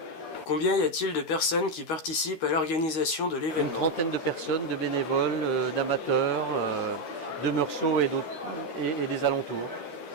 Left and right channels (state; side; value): late; right; 13 ms